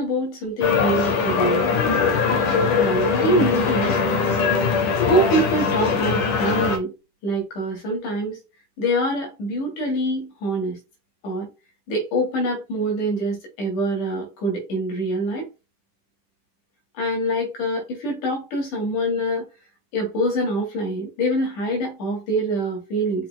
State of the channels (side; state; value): right; late; 10 ms